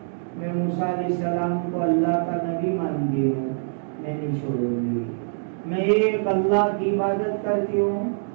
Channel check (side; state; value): left; silent; digital silence